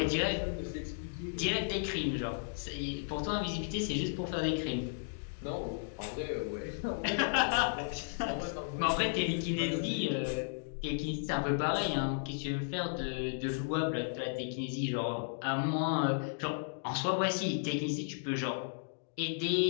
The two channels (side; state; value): right; silent; digital silence